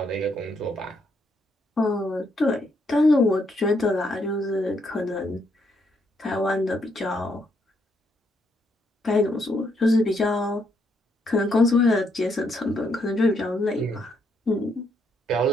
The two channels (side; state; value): both; normal; correlation 0.75